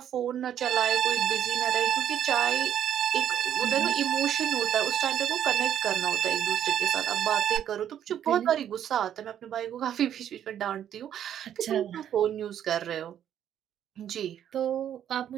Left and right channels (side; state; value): left; quieter; 10.1 dB